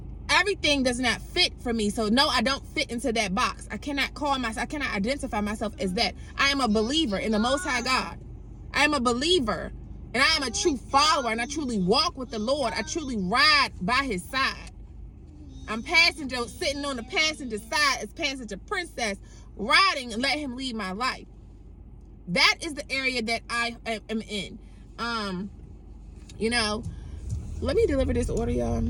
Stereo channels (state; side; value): identical; both; correlation 1.00